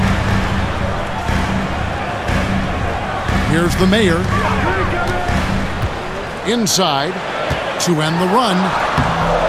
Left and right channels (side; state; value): both; identical; correlation 1.00